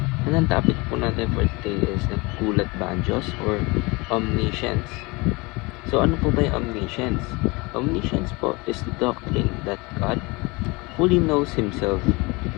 And ang topic po natin for today is nagkulat ba ang Diyos or omniscience? So ano po ba yung omniscience? Omniscience po is the doctrine that God fully knows Himself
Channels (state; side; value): quieter; right; 25.5 dB